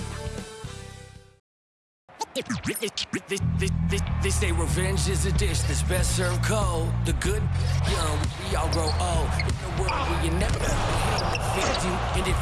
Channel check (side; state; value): both; identical; correlation 1.00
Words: They say revenge is a dish that's best served cold. The good, young, we all grow old. In a world where you never fit you, and if